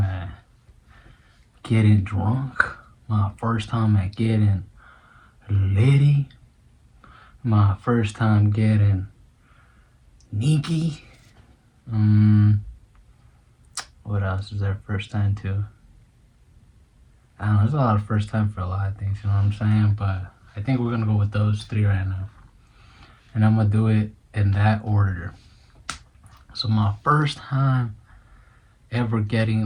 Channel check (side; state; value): both; identical; correlation 1.00